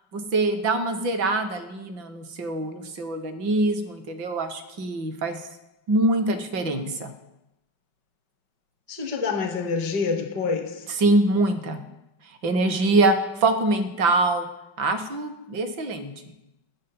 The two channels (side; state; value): left; late; 5.3 ms